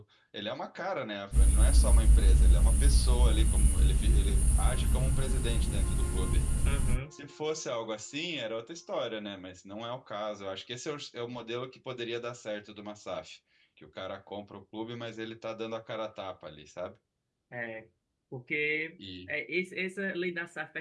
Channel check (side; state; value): both; identical; correlation 1.00